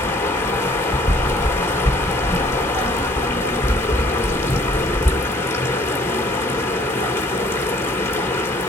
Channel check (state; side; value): normal; both; correlation 0.58